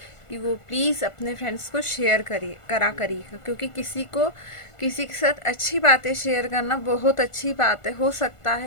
कि वो प्लीज़ अपने फ्रेंड्स को शेयर करिएगा, क्योंकि किसी के साथ अच्छी बातें शेयर करना बहुत अच्छी बात है। हो सकता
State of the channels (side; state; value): right; late; 1.5 ms